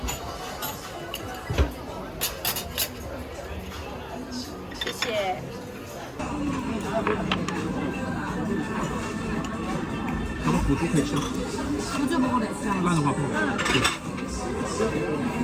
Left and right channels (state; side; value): identical; both; correlation 1.00